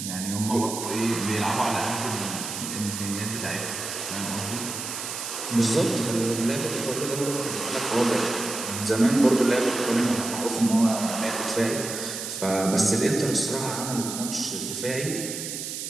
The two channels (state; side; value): noise; right; hiss, 6 dB below the sound